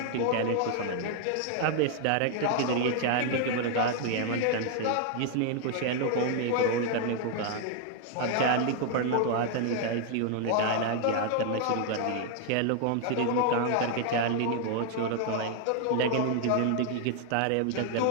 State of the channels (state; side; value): different; both; correlation 0.00